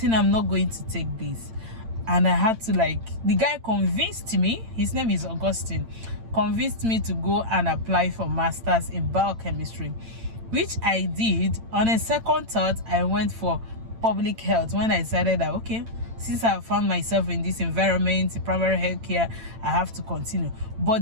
I'm not going to take this. And I had to the guy convinced me, his name is Augustine, convinced me to go and apply for masters in biochemistry, which I did. On a second thought, I went for public health when I decided that, okay, since I found myself in this environment, in primary health care, I have to continue.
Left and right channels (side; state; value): left; late; 8.9 ms